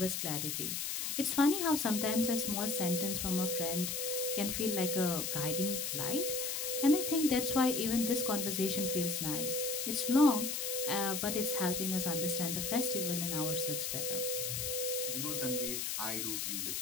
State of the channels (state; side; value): noise; left; hiss, 2 dB below the sound